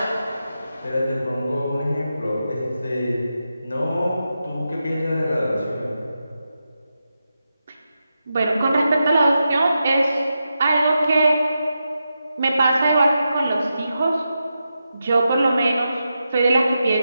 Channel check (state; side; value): inverted; both; correlation -0.88